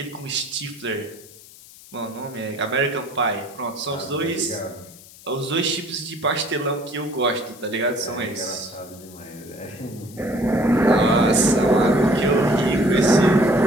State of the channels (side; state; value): left; noise; hiss, 21 dB below the sound